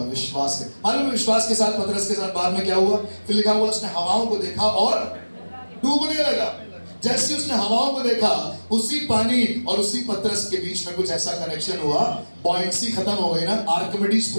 विश्वास से। मालूम विश्वास के साथ पतरस के साथ बाद में क्या हुआ? फिर लिखा हुआ उसने हवाओं को देखा और डूबने लगा। जैसे उसने हवाओं को देखा, उसी पानी और उसी पतरस के बीच में कुछ ऐसा कनेक्शन हुआ, बॉयंसी खत्म हो गई ना, आर्किमिडीज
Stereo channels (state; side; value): inverted; both; correlation -1.00